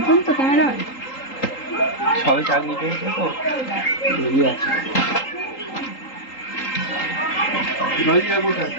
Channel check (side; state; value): right; late; 3.8 ms